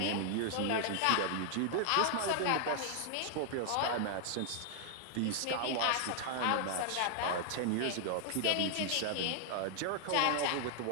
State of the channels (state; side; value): different; both; correlation 0.00